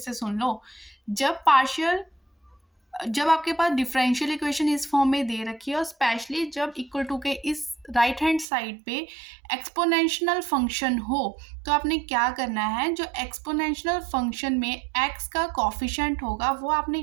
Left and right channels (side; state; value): left; drops out; at 8.5 s